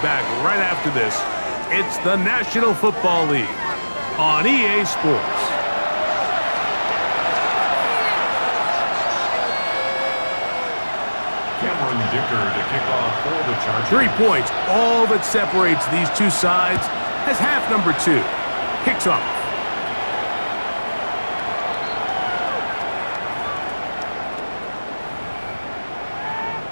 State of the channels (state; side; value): inverted; both; correlation -1.00